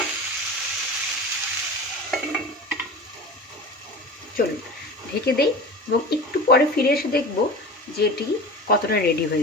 চলুন ঢেকে দেই এবং একটু পরে ফিরে এসে দেখব যে এটি কতটা রেডি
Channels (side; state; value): both; normal; correlation 0.33